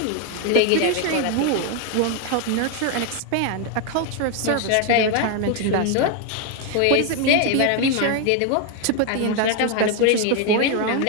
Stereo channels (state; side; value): different; both; correlation 0.01